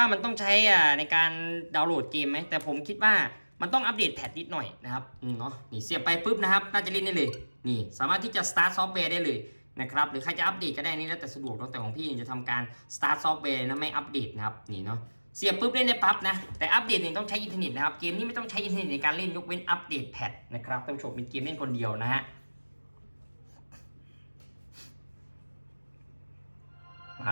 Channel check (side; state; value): both; inverted; correlation -1.00